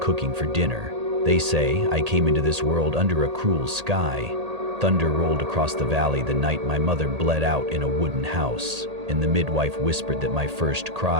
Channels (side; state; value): left; late; 1.8 ms